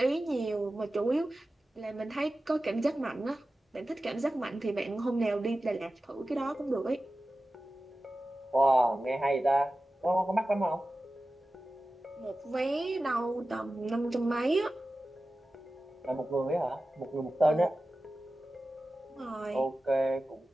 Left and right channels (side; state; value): both; normal; correlation 0.95